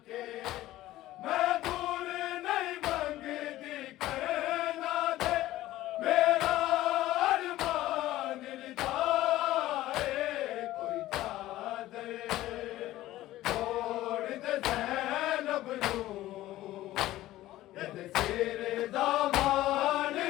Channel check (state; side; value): quieter; right; 15.5 dB